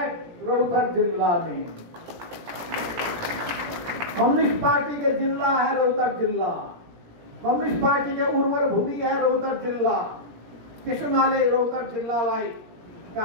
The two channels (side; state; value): left; late; 17 ms